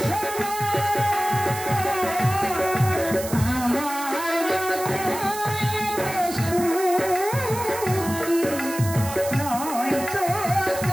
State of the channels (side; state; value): right; noise; hiss, 10 dB below the sound